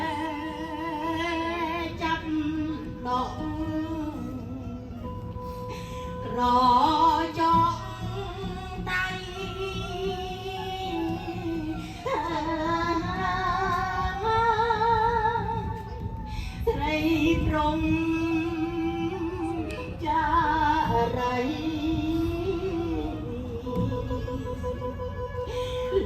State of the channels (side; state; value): both; identical; correlation 1.00